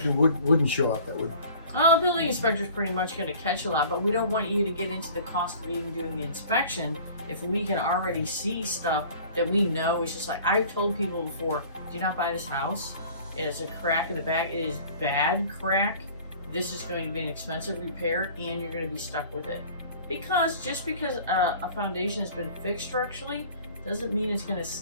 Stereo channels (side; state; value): both; inverted; correlation -0.47